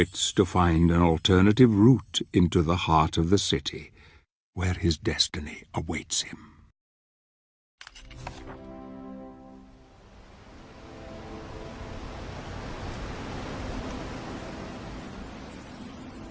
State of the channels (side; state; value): both; identical; correlation 1.00